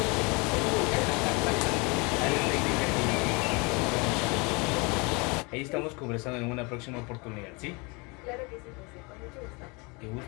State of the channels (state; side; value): quieter; right; 28.9 dB